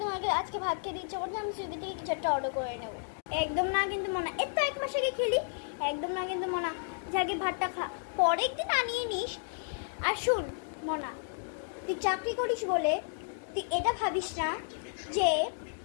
আগে আজকে ভাত খেতে ইচ্ছে করছে, আমি সুইগি থেকে কিছু একটা অর্ডার করে নেবো। একদম না কিন্তু মনা, এর তো এক মাস আগে খেলি। একদম না কিন্তু মনা, যাকে ভাতটা খা, পরে একদিন আনিয়ে নিস। আর শুন মনা, তুই চাকরি করিস বলে তুই এটা ভাবিস না যে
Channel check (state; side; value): silent; right; digital silence